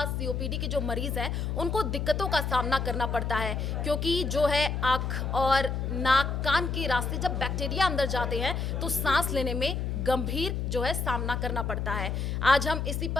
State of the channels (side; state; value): left; noise; hum, 1 dB below the sound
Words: सीओपीडी के जो मरीज़ हैं उनको दिक्कतों का सामना करना पड़ता है, क्योंकि जो है आँख और नाक कान के रास्ते जब बैक्टीरिया अंदर जाते हैं तो सांस लेने में गंभीर जो है सामना करना पड़ता है। आज हम इसी